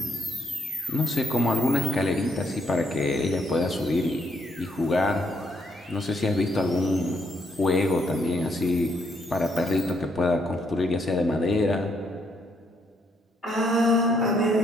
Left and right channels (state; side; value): normal; both; correlation 0.73